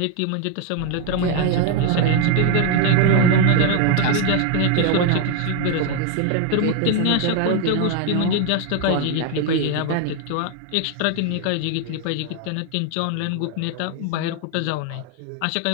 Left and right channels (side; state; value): both; different; correlation 0.01